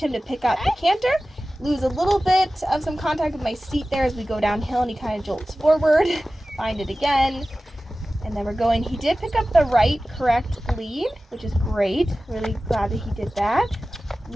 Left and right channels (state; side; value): normal; both; correlation 0.96